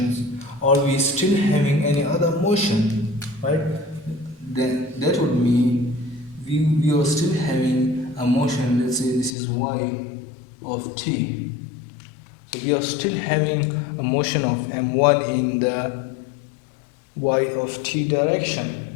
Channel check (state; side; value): drops out; right; at 9.3 s